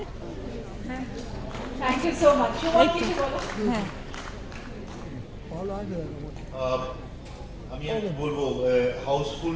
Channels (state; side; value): identical; both; correlation 1.00